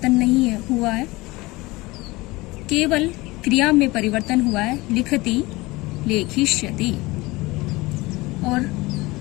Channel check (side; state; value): right; quieter; 21.7 dB